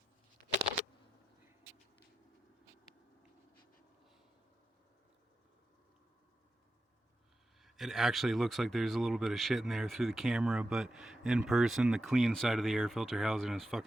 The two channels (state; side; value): normal; both; correlation 0.89